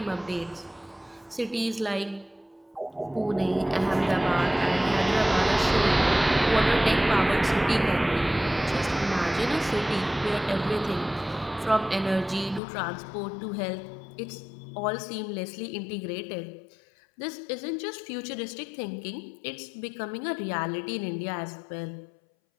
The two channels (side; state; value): right; drops out; at 12.6 s